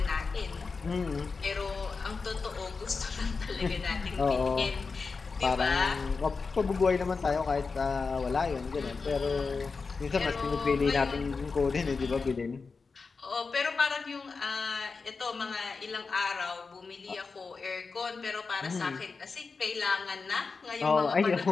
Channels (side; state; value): right; quieter; 4.6 dB